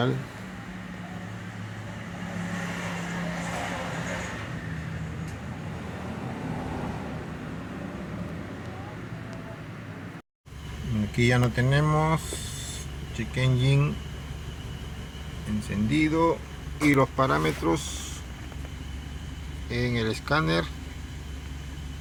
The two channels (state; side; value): identical; both; correlation 1.00